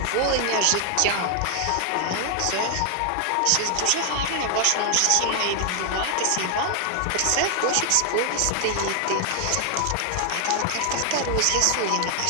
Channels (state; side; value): different; both; correlation 0.00